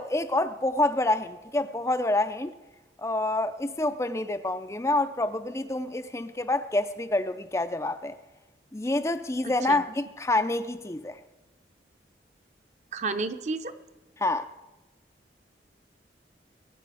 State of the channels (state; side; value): normal; both; correlation 0.61